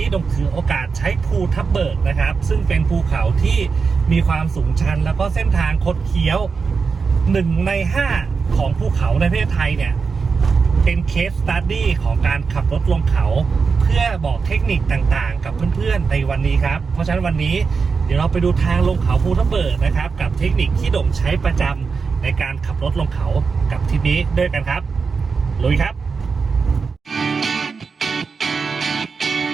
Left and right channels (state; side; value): quieter; left; 5.1 dB